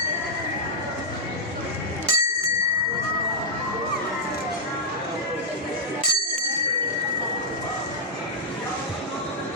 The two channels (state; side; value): normal; both; correlation -0.08